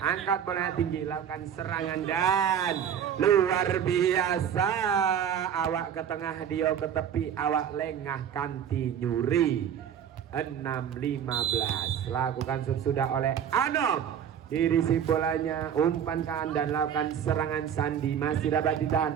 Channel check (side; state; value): left; quieter; 8.8 dB